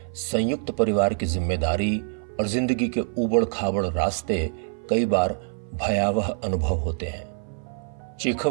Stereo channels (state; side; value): silent; left; 57 dB below the other